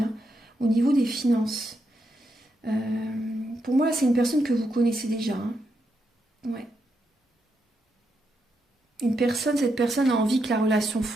au niveau des finances. Pour moi là c'est une personne que vous connaissez déjà. Hein. Ouais. Cette personne a envie que la relation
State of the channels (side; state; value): both; normal; correlation 0.82